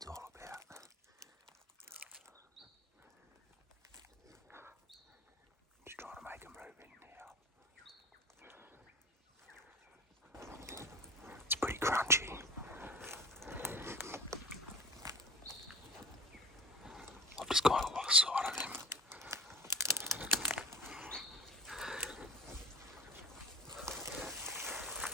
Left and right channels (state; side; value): normal; both; correlation 0.37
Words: all about. Just trying to make him move in now. It's pretty crunchy. I've just kind of lost sight of him.